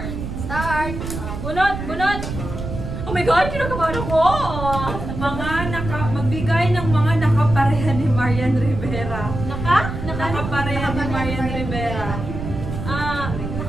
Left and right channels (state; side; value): noise; right; rumble, 6 dB below the sound